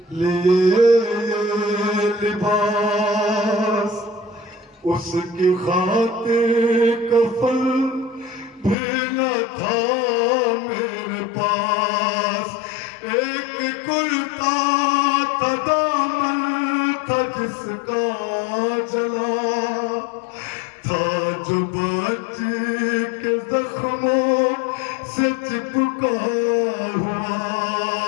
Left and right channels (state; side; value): drops out; right; at 8.8 s